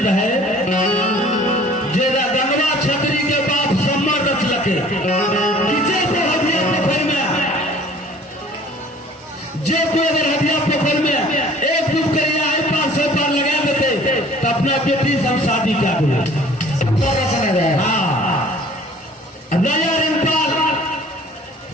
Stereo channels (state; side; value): normal; both; correlation 0.50